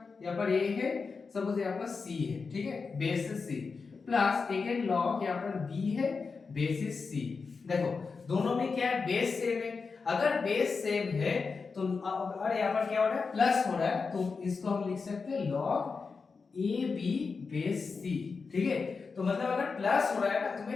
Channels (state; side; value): quieter; right; 4.8 dB